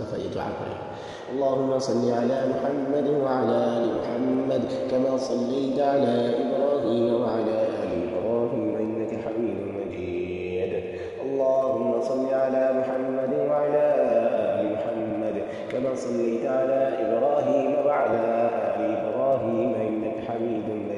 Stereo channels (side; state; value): both; identical; correlation 1.00